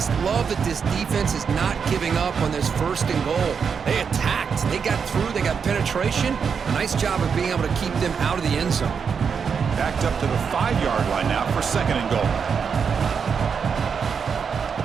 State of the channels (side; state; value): left; quieter; 6.3 dB